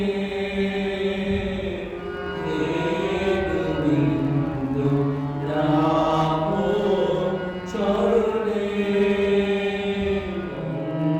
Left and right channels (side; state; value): both; identical; correlation 1.00